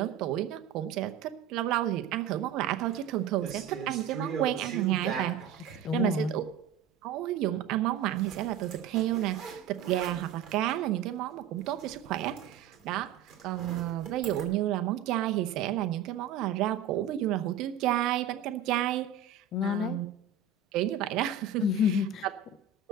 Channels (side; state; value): left; quieter; 7.3 dB